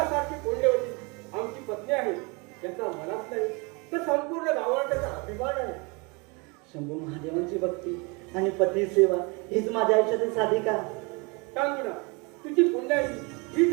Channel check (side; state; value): left; quieter; 29.6 dB